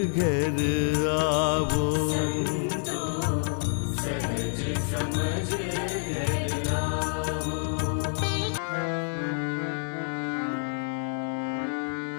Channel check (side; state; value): right; silent; digital silence